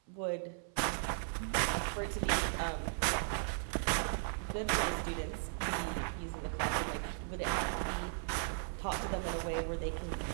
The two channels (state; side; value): silent; left; 53 dB below the other